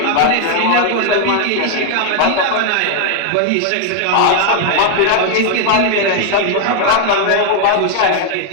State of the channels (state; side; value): different; both; correlation 0.00